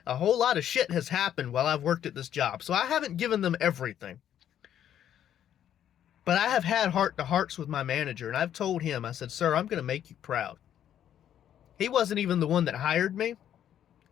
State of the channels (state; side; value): quieter; right; 10.3 dB